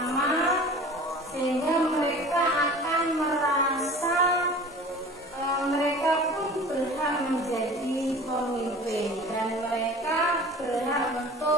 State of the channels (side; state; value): both; normal; correlation 0.41